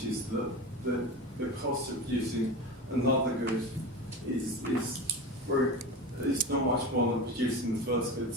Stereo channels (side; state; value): both; normal; correlation 0.27